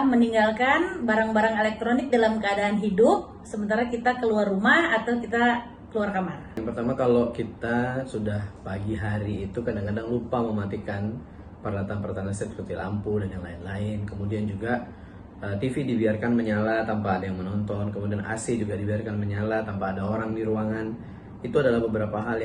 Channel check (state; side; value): identical; both; correlation 1.00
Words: meninggalkan barang-barang elektronik dalam keadaan hidup, sementara kita keluar rumah atau kita keluar kamar. Yang pertama, kalau kita sudah pagi hari itu kadang-kadang lupa mematikan peralatan-peralatan listrik seperti lampu dan yang lain-lain. Kemudian juga TV dibiarkan menyala tanpa ada yang menonton. Kemudian AC juga dibiarkan menyala tanpa ada orang di ruangan. Itu adalah beberapa hal